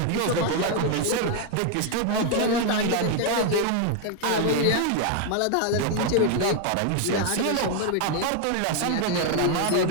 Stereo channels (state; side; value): different; both; correlation 0.00